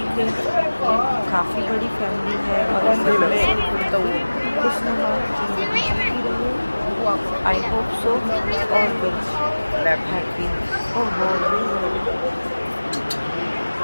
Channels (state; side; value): inverted; both; correlation -1.00